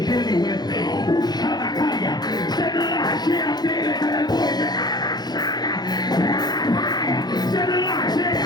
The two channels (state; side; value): late; right; 0.20 ms